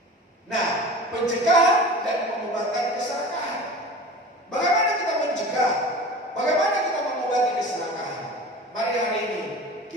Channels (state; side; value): normal; both; correlation 0.37